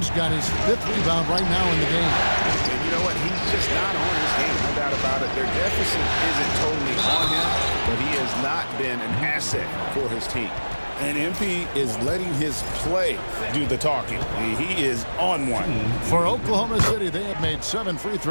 got his 5th rebound right now in the game. And you know what? He's just not on his game, no doubt about it. Their deficit isn't totally on him, but he has not been an asset for his team. And MP is letting his play do the talking. He is on one. For Oklahoma City, they have made 7 free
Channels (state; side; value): inverted; both; correlation -1.00